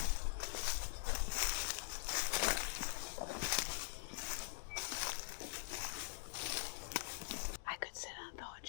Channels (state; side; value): silent; right; digital silence